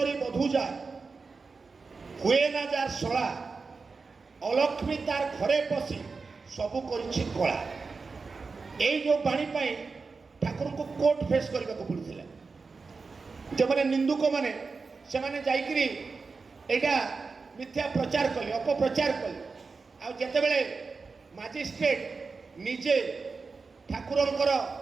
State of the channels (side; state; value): left; quieter; 4.5 dB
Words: ବଧୂଜା, ହୁଏ ନା ଯାର ଶଳା, অলক্ষ্মী তার ঘরে পশি সবু করেছি কলা। এই যে বাণী পাই ঠাকুরଙ୍କୁ কোর্ট ফেস କରିବାକୁ পড়িଥିଲା। যেমানে নিন্দুক মানে সেমানে যাইকিরি এইটা মিথ্যা প্রচার কলে, অপপ্রচার কলে। আর যেতেবেলে ম্যাজিস্ট্রেট নিজে ঠাকুরଙ୍କର